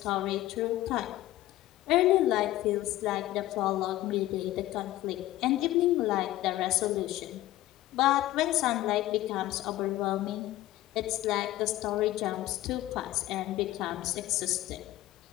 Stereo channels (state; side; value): quieter; right; 15.6 dB